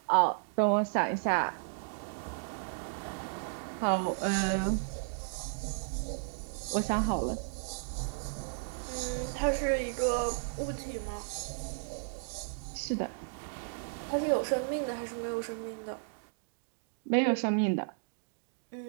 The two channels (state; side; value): silent; left; digital silence